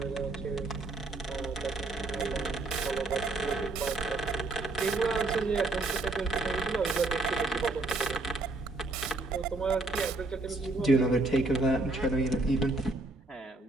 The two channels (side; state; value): left; quieter; 3.0 dB